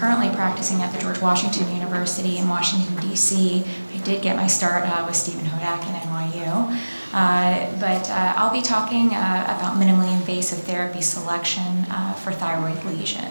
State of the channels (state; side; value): inverted; both; correlation -1.00